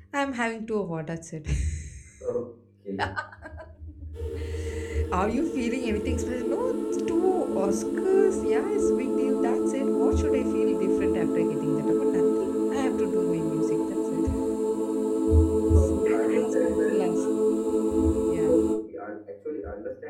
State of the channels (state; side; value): identical; both; correlation 1.00